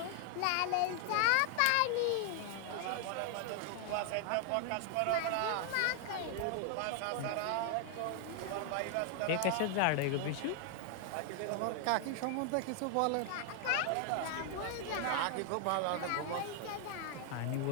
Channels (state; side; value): different; both; correlation 0.00